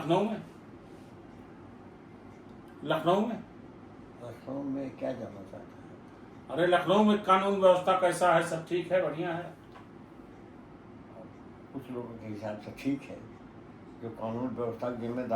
में, लखनऊ में लखनऊ में क्या जानना चाहता है? अरे लखनऊ में कानून व्यवस्था कैसा है? सब ठीक है, बढ़िया है? कुछ लोगों के हिसाब से ठीक है, जो कानून व्यवस्था के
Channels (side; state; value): both; identical; correlation 1.00